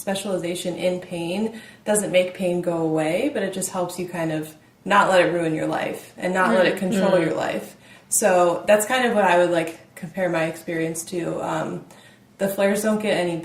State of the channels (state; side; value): identical; both; correlation 1.00